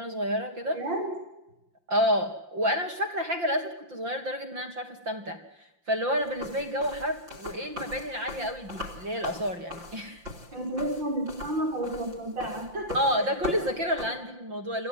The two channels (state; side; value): late; left; 5.8 ms